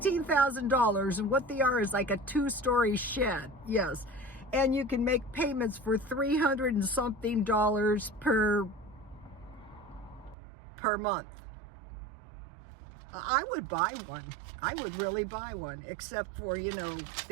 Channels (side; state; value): left; drops out; at 10.4 s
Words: and what they are is like a 2-story shed. Yes. And you can make payments for $300 and something per month. I would buy one. I would really buy one, except for, you know,